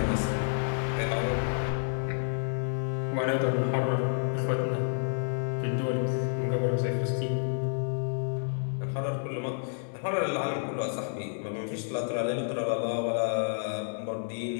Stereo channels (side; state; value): right; silent; digital silence